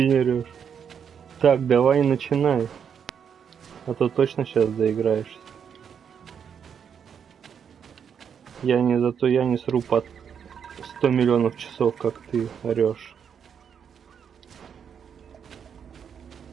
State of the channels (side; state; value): left; quieter; 7.6 dB